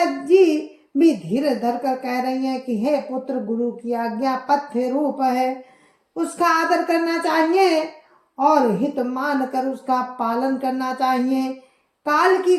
जी भी धीरे धर कर कह रही हैं कि हे पुत्र, गुरु की आज्ञा पथ्य रूप है, उसका आदर करना चाहिए और हित मान कर उसका पालन करना चाहिए। काल की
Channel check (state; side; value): identical; both; correlation 1.00